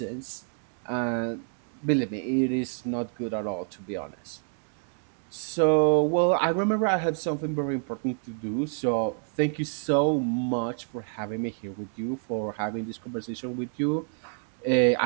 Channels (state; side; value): silent; left; 59 dB below the other